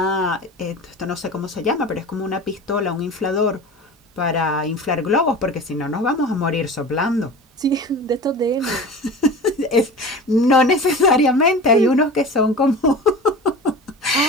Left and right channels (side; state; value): both; normal; correlation 0.35